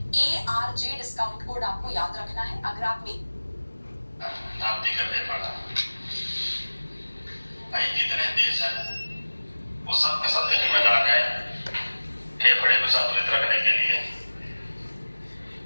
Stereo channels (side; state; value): both; inverted; correlation -1.00